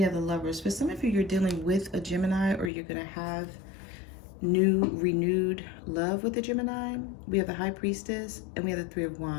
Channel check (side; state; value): right; drops out; at 2.7 s